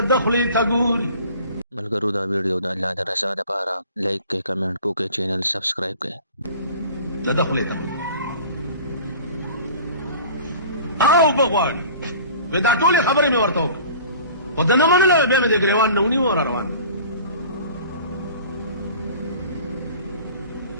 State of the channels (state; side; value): inverted; both; correlation -0.44